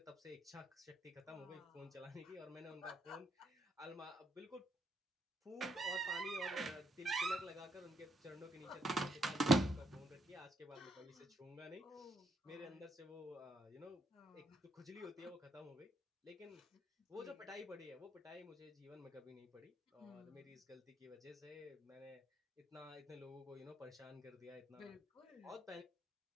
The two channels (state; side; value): normal; both; correlation 0.74